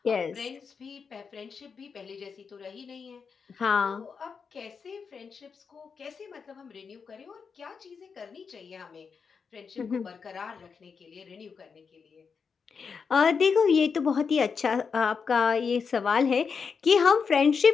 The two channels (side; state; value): right; quieter; 5.7 dB